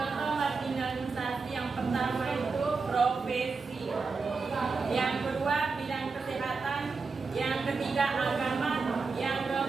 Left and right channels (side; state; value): left; quieter; 4.5 dB